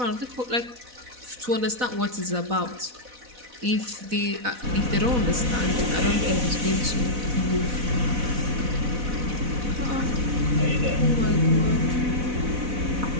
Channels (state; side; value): late; left; 4.1 ms